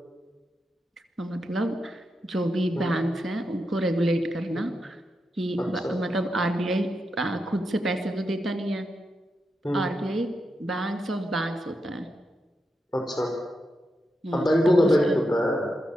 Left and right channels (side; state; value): both; normal; correlation 0.86